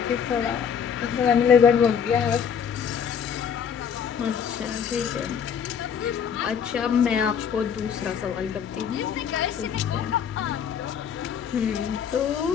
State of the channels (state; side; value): quieter; right; 7.5 dB